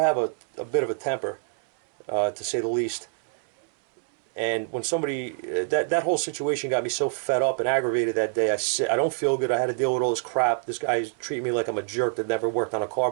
a bit of a temper, to say the least. And when somebody, that whole situation got me so fed up and aggravated that day. I don't feel good. I had to deal with all this crap. This guy's treating me like I'm a jerk that never worked on a car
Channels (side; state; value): left; silent; 61 dB below the other